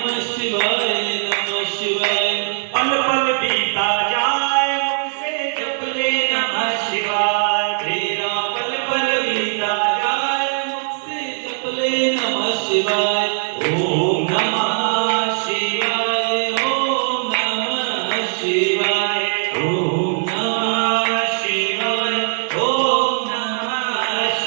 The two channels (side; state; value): left; silent; 59 dB below the other